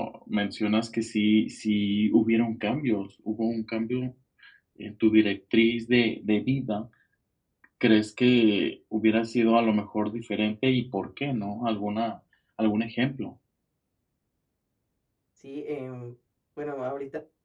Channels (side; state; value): both; identical; correlation 1.00